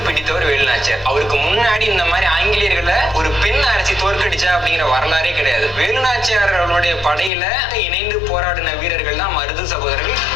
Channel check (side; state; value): right; drops out; at 7.3 s